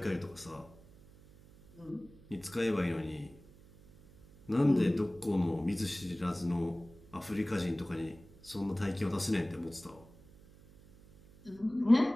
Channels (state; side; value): noise; right; hum, 23 dB below the sound